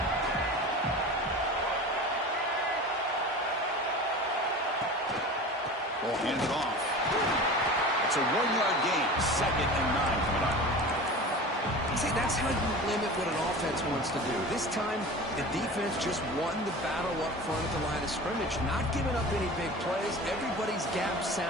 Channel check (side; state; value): both; normal; correlation 0.35